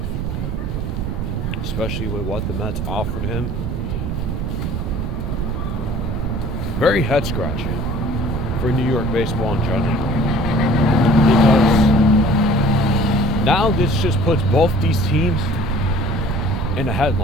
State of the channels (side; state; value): right; noise; rumble, 3 dB below the sound